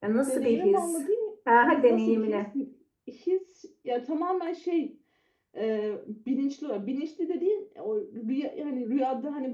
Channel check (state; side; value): identical; both; correlation 1.00